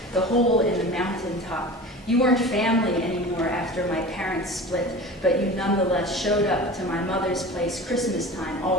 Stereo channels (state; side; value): normal; both; correlation 0.35